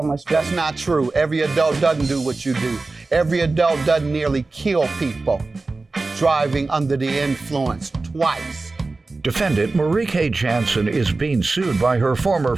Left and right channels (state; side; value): quieter; left; 3.5 dB